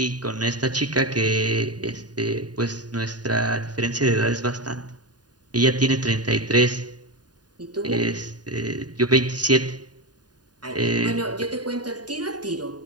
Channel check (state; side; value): late; left; 0.69 ms